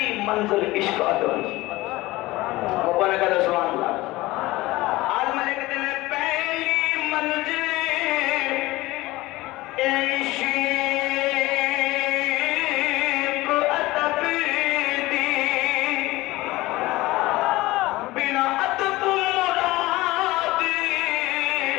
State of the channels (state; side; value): quieter; right; 19.2 dB